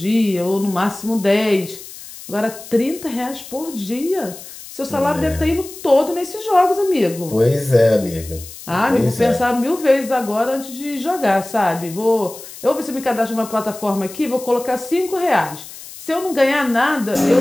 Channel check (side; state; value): left; noise; hiss, 15 dB below the sound